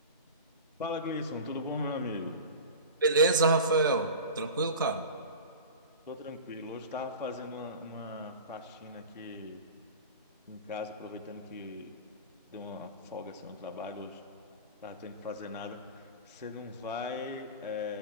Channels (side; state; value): both; inverted; correlation -0.33